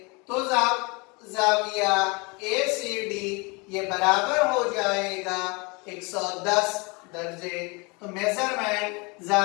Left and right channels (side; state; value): right; quieter; 28.8 dB